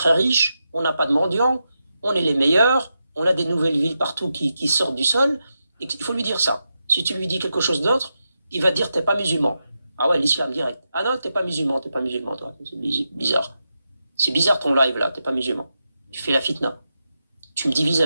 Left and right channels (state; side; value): inverted; both; correlation -0.87